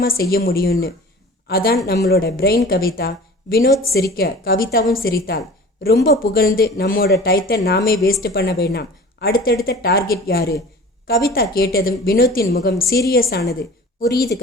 செய்ய முடியும்னு. அதான் நம்மளோட பிரெயின் கவிதா. வினோத் சிரிக்க கவிதாவும் சிரித்தாள். ரொம்ப புகழ்ந்து நம்மோட டயத்தை நாமே வேஸ்ட் பண்ண வேண்டாம். அடுத்தடுத்த டார்கெட் யாரு? கவிதா கேட்டதும் வினோத்தின் முகம் சீரியஸ் ஆனது. புரியுது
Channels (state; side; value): normal; both; correlation 0.41